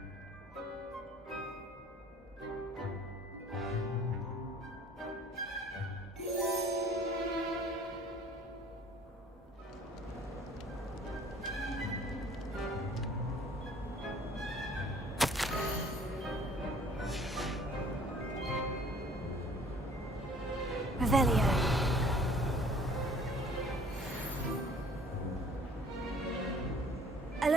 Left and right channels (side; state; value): both; normal; correlation 0.53